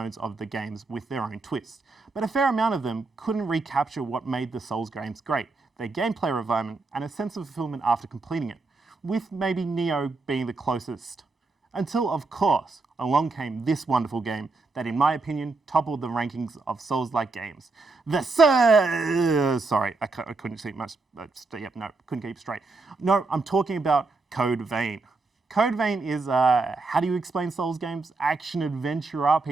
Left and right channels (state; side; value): quieter; left; 3.7 dB